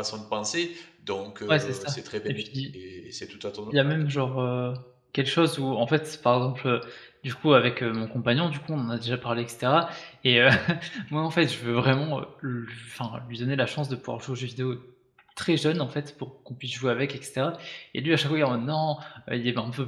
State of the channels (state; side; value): identical; both; correlation 1.00